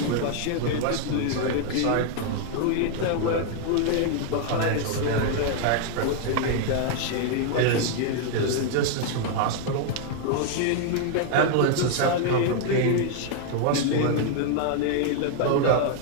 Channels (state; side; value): different; both; correlation 0.00